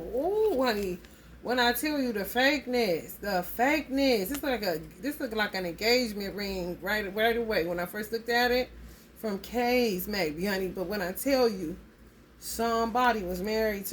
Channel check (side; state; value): both; identical; correlation 1.00